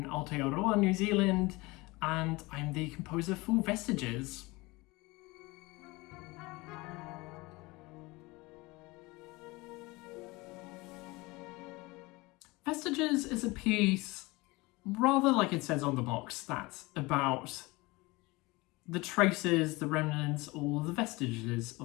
Aotearoa, New Zealand, and I'm the composer for Vestiges. Vestiges is a piece, rather like it says on the box, that's about the traces, the remnants, or the vestiges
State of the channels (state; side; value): quieter; right; 23.0 dB